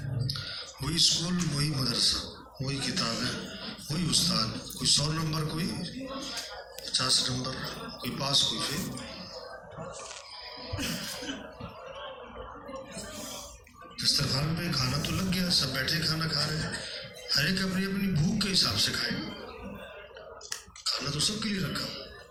وہی اسکول، وہی مدرسہ، وہی کتابیں، وہی استاد، کوئی 100 نمبر، کوئی 50 نمبر، کوئی پاس کوئی فیل. دسترخوان پہ کھانا تو لگ گیا، سب بیٹھے کھانا کھا رہے ہیں، ہر ایک اپنی اپنی بھوک کے حساب سے کھائے گا. کھانا تو سب کے لیے رکھا.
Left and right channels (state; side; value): identical; both; correlation 1.00